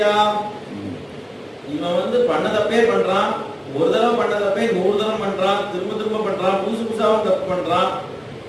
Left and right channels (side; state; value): both; identical; correlation 1.00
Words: இவன் பண்ண தப்பே பண்றான், ஒரு தடவை பண்ண தப்பே 100 தடவை பண்றான், திரும்ப திரும்ப பண்றான், புதுசு புதுசாவும் தப்பு பண்றான்.